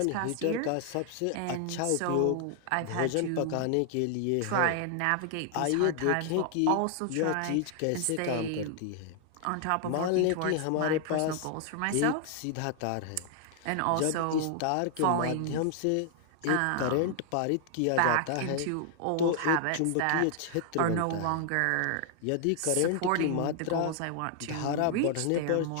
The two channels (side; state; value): both; different; correlation 0.00